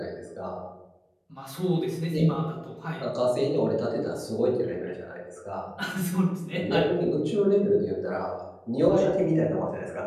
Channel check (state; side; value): identical; both; correlation 1.00